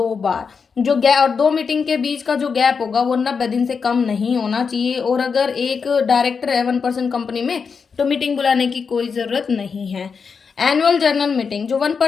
बार। जो गैप, और 2 मीटिंग के बीच का जो गैप होगा वो 90 दिन से कम नहीं होना चाहिए। और अगर एक डायरेक्टर है 1% कंपनी में तो मीटिंग बुलाने की कोई जरूरत नहीं है। एनुअल जनरल मीटिंग, जो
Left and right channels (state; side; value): quieter; right; 5.6 dB